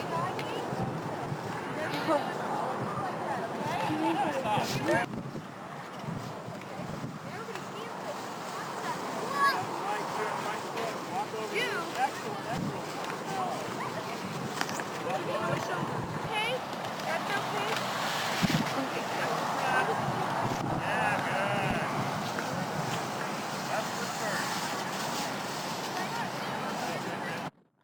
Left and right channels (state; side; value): identical; both; correlation 1.00